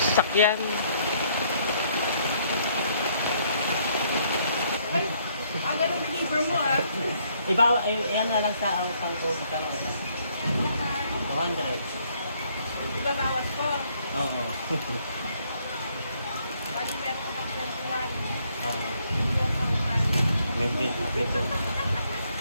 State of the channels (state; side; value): inverted; both; correlation -0.68